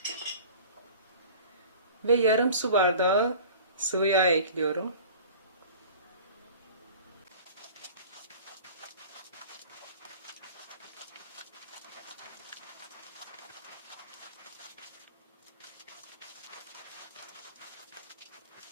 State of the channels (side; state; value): both; inverted; correlation -0.42